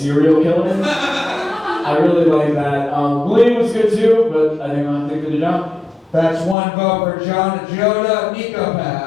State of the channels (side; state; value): right; drops out; at 6.6 s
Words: killer. I really like that. Malia was good too, but I think they did a job. That's one vote for John Ajodah. Niko